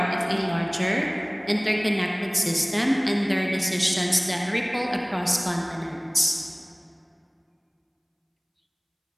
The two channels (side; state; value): both; identical; correlation 1.00